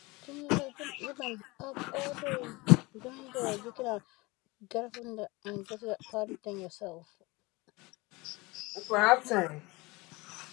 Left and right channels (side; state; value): right; quieter; 23.7 dB